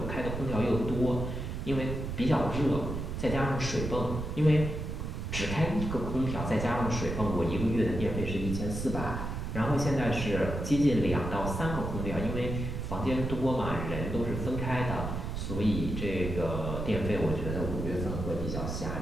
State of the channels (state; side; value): noise; right; rumble, 4 dB below the sound